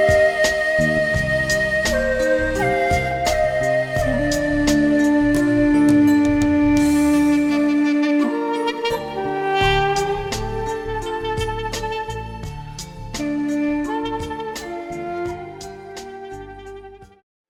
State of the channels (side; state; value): both; identical; correlation 1.00